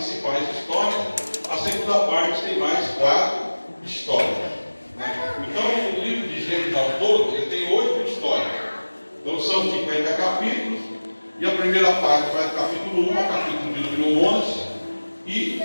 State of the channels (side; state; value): both; inverted; correlation -1.00